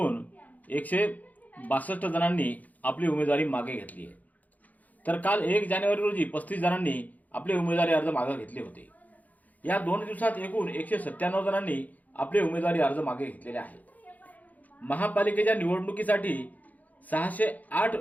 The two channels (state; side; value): late; right; 0.079 ms